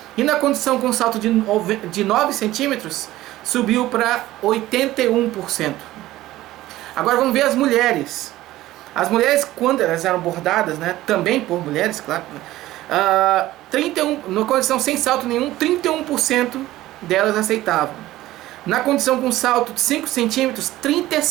E na condição com salto de 9 centímetros, subiu para 81%. Agora vamos ver as mulheres. As mulheres, quando elas eram abordadas, né, também por mulheres, claro, na condição sem salto nenhum, 31% delas aceitavam. Na condição com salto de 5 centímetros,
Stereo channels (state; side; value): quieter; left; 15.9 dB